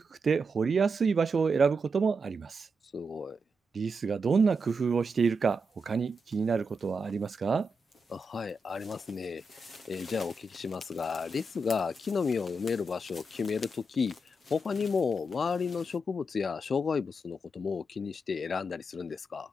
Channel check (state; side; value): normal; both; correlation 0.85